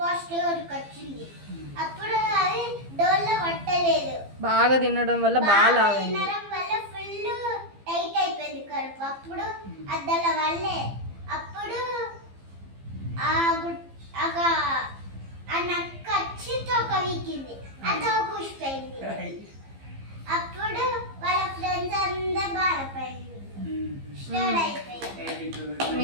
వచ్చింది. అప్పుడు అది డోర్లో పట్టలేదు. బాగా తినడం వల్ల బాగా తినడం వల్ల ఫుల్ టైట్ అయిపోయింది కడుపు. అప్పుడు అద్దల వల్లే అప్పుడు ఆ నక్క వచ్చి తోక వీకింది. ఆ తోక ఊసిపోయింది. అప్పుడు వాళ్ళ ఫ్రెండ్స్ అందరూ బాధపడింది.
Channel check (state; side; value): late; left; 15 ms